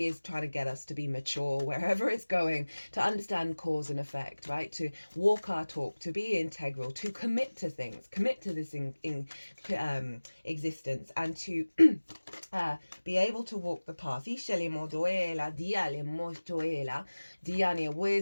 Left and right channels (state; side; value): inverted; both; correlation -1.00